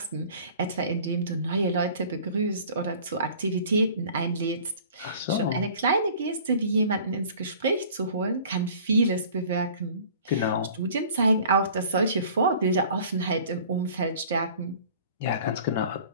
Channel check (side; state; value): both; inverted; correlation -0.47